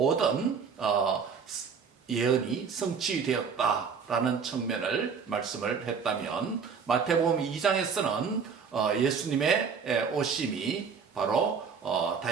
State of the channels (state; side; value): quieter; left; 6.1 dB